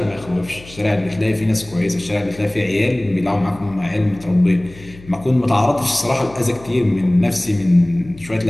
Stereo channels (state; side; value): noise; left; hum, 20 dB below the sound